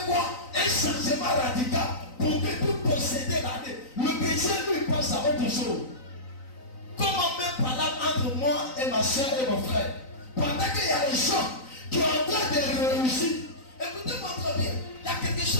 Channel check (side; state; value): right; late; 3.9 ms